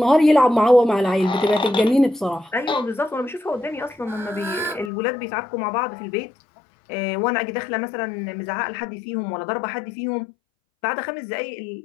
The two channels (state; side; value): drops out; right; at 4.9 s